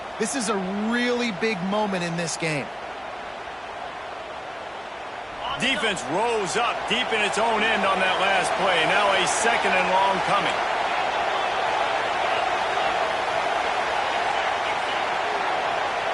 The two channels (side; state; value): both; identical; correlation 1.00